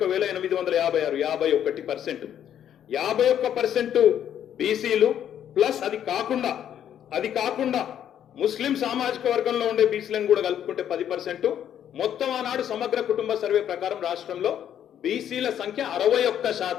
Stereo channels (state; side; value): quieter; right; 9.9 dB